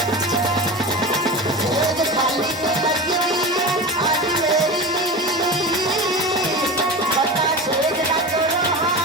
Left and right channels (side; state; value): both; normal; correlation 0.27